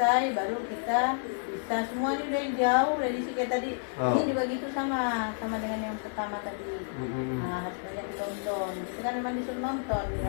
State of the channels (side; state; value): right; silent; 58 dB below the other